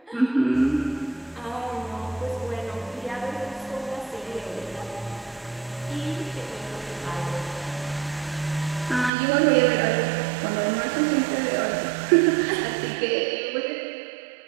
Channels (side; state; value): left; drops out; at 9.1 s